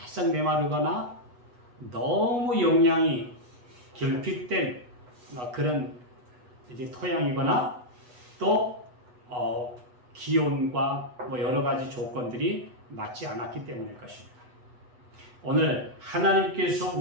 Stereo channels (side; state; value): left; late; 8.2 ms